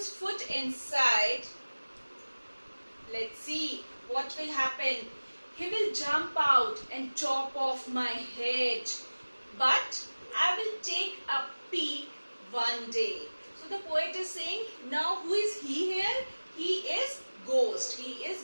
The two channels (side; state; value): both; inverted; correlation -1.00